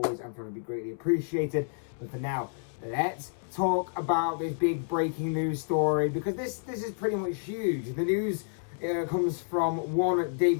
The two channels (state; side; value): silent; right; 58 dB below the other